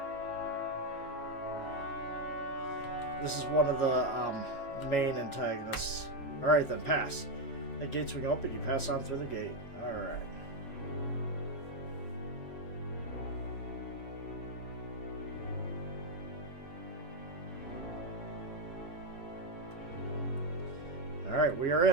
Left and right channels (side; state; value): right; late; 7.2 ms